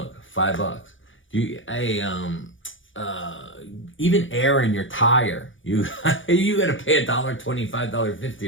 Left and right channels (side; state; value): right; late; 0.56 ms